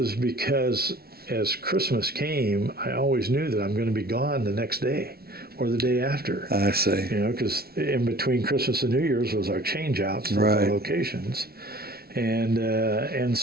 because as Christmas came, I always knew that I'm going to be gone the next day or the day after. I see. Because in between Christmas and New Year's was our change-outs of our locations. And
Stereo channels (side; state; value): left; late; 0.45 ms